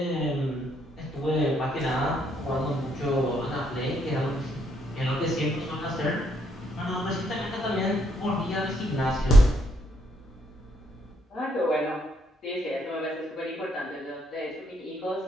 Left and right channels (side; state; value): both; normal; correlation 0.73